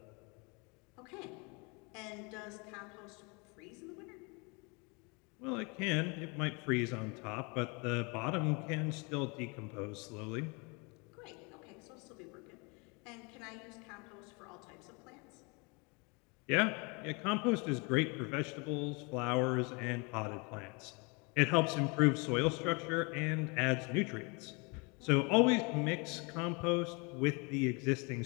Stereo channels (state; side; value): quieter; right; 30.6 dB